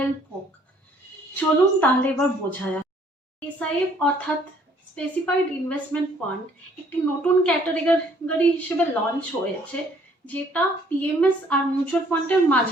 হোক। চলুন তাহলে এবার বোঝা যাক। এসআইএফ অর্থাৎ স্পেসিফাইড ইনভেস্টমেন্ট ফান্ড একটি নতুন ক্যাটাগরি হিসেবে লঞ্চ হয়েছে, যেটা পিএমএস আর মিউচুয়াল ফান্ডের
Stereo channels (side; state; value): both; normal; correlation 0.61